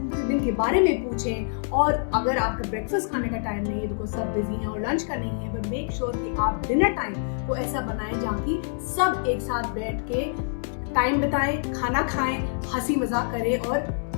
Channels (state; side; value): silent; right; 61 dB below the other